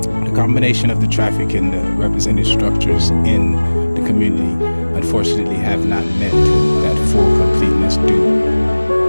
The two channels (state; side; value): inverted; both; correlation -1.00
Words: the combination of the traffic and the represented structures in the community unfortunately have not met that full completeness due